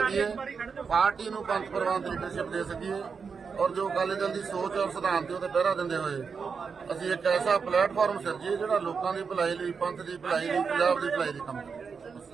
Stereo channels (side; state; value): left; quieter; 5.6 dB